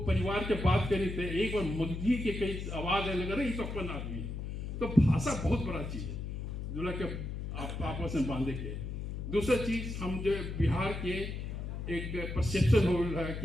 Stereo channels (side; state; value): left; noise; hum, 5 dB below the sound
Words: परिवार के बात करी थे, एक बार मुर्गी के कई आवाज आने लगा, तो अपन आदमी। तो भाषा बहुत बड़ा चीज है जो के आपस में बांधे के। दूसरा चीज, हम जो बिहार के एक परसेप्शन हो रहा है